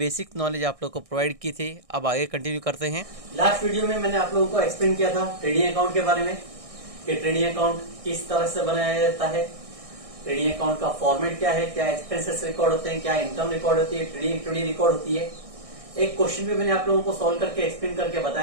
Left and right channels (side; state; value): left; late; 1.6 ms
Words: नॉलेज आप लोग को प्रोवाइड की थी। अब आगे कंटिन्यू करते हैं। लास्ट वीडियो में मैंने आप लोगों को एक्सप्लेन किया था ट्रेडिंग अकाउंट के बारे में कि ट्रेडिंग अकाउंट किस तरह से बनाया जाता है, ट्रेडिंग अकाउंट का फॉर्मेट क्या है, क्या एक्सपेंसेस रिकॉर्ड होते हैं, क्या इनकम रिकॉर्ड होती है, ट्रेडिंग एक्टिविटी रिकॉर्ड होती है। एक क्वेश्चन भी मैंने आप लोगों को सॉल्व करके एक्सप्लेन करके